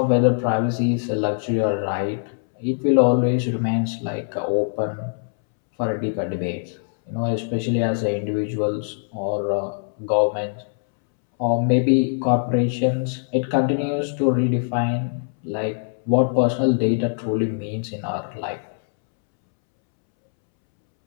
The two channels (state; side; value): silent; right; 64 dB below the other